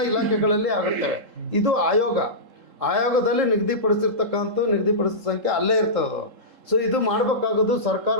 ಇಲಾಖೆಗಳಲ್ಲಿ ಆಗುತ್ತವೆ. ಇದು ಆಯೋಗದಲ್ಲಿ ನಿಗದಿಪಡಿಸಿದ ಸಂಖ್ಯೆ ಅಲ್ಲೇ ಇರ್ತದೆ. ಸೊ ಇದು ಮಾಡಬೇಕಾಗೋದು ಸರ್ಕಾರ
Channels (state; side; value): late; left; 3.7 ms